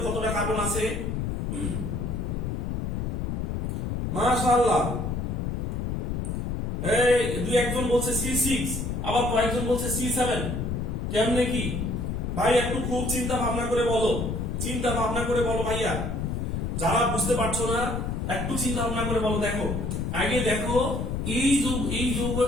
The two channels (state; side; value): noise; left; rumble, 2 dB below the sound